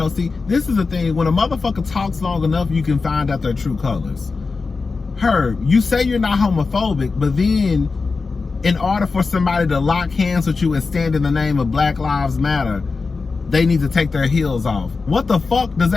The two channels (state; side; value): quieter; right; 4.3 dB